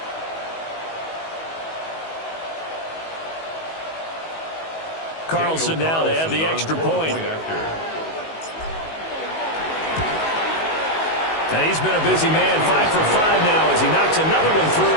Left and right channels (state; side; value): late; right; 19 ms